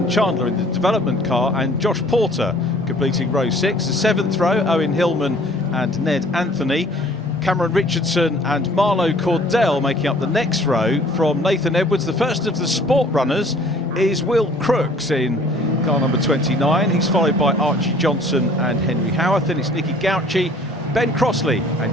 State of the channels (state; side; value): normal; both; correlation 0.54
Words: Chandler in the development car and Josh Porter completing row 6. The 7th row, Owen Hillman and Ned Anthony. Cameron Richardson and Marlo Cordell making up the next row. From Nathan Edwards, the first of the sport runners is Will Crooks in car number 29. He's followed by Archie Johnson and Henry Howarth. Then it's Nicky Gauci, Ben Crossley and